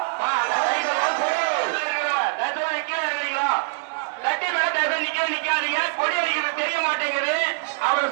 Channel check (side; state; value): left; silent; digital silence